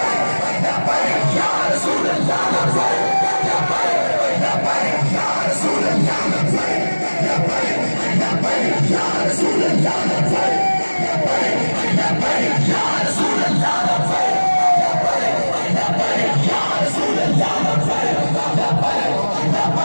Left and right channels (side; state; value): both; inverted; correlation -1.00